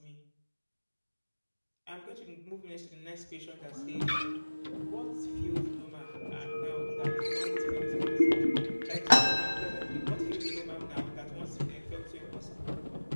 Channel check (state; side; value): inverted; both; correlation -1.00